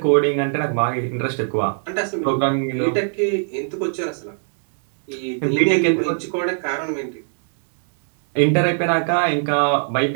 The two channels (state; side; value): silent; left; digital silence